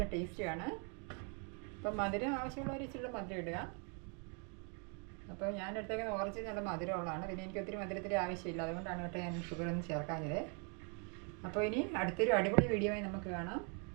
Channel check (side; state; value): left; quieter; 37.6 dB